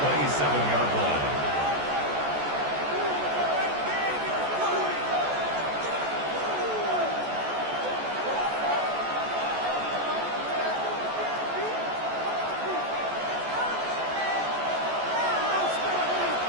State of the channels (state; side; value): late; left; 14 ms